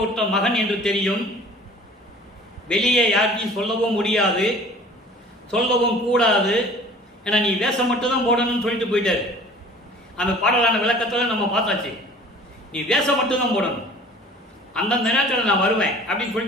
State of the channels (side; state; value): both; normal; correlation 0.47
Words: விட்ட மகன் என்று தெரியும். வெளியே யாருக்கும் சொல்லவும் முடியாது, சொல்லவும் கூடாது. ஏன்னா நீ வேஷம் மட்டும்தான் போடணும்னு சொல்லிட்டு போயிட்டாரு. அந்த பாடலான விளக்கத்தில் நம்ம பார்த்தாச்சு. நீ வேஷம் மட்டும்தான் போடணும், அந்தந்த நேரத்தில் நான் வருவேன் அப்படின்னு